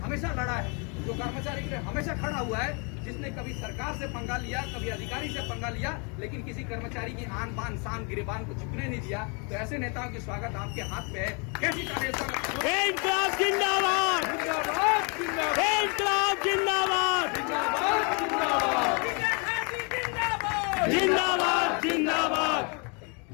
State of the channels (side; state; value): right; quieter; 34.4 dB